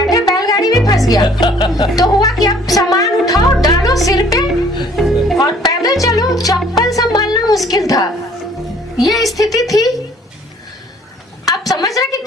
बैलगाड़ी में फंस गया। तो हुआ कि आप सामान उठाओ, डालो सिर पे और पैदल चलो, चप्पल संभालना मुश्किल था, ये स्थिति थी। आप समझ रहे कि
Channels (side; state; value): both; normal; correlation 0.57